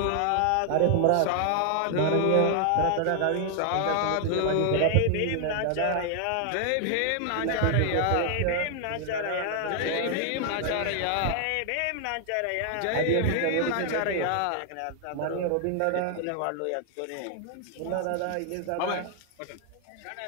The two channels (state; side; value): different; both; correlation 0.00